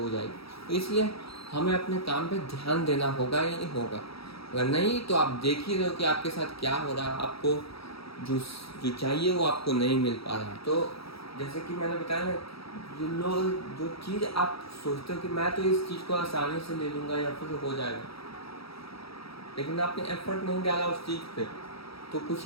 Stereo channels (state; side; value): late; right; 0.76 ms